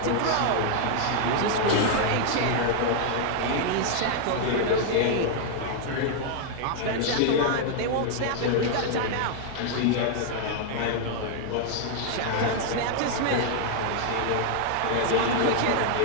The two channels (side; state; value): both; different; correlation 0.00